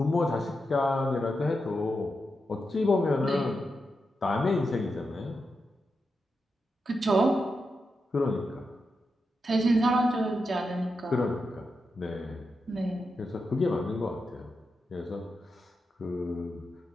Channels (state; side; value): normal; both; correlation 0.87